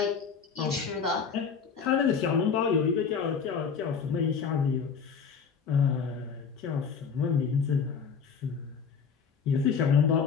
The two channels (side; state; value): right; quieter; 6.1 dB